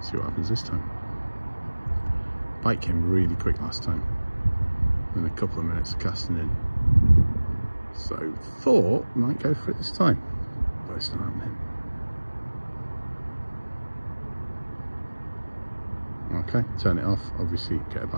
See what happens this time. Bite came really quick last time, in a couple of minutes of casting in. So thought might go for it this time, but it's not happening. Okay, turn it off. Obviously get a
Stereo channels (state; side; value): inverted; both; correlation -1.00